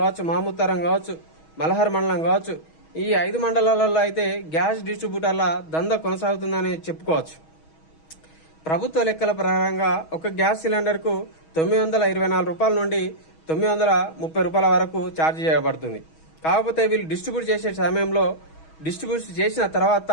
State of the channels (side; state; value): right; late; 6.3 ms